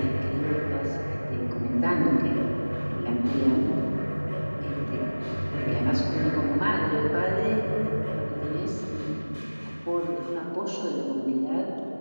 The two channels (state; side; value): inverted; both; correlation -1.00